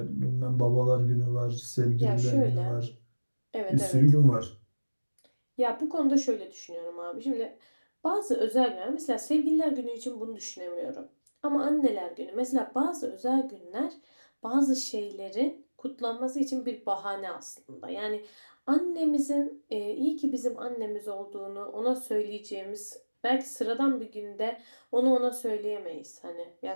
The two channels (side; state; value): both; inverted; correlation -1.00